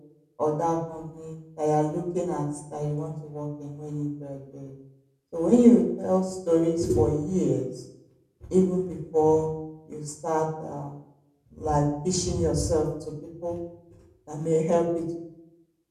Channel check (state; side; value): identical; both; correlation 1.00